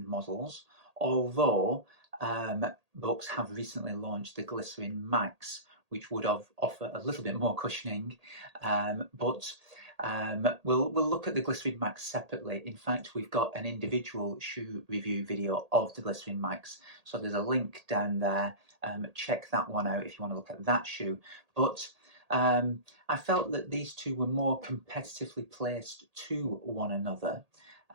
models, although Brooks have recently launched the Glycerin Max, which would offer a little bit more cushioning, but we'll look at the Glycerin Max separately. In fact, we've got an individual shoe review video of the Glycerin Max, so there's a link down there. Check that one out if you want to look at that shoe. But I felt that these two were more competitively placed to one another,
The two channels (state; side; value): late; left; 1.8 ms